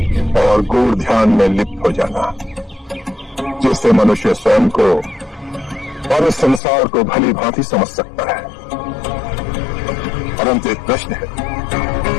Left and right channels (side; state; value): right; drops out; at 6.6 s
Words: और गूढ़ ध्यान में लिप्त हो जाना, जिससे मनुष्य स्वयं को और इस संसार को भली भांति समझ सकता है। परंतु एक प्रश्न है,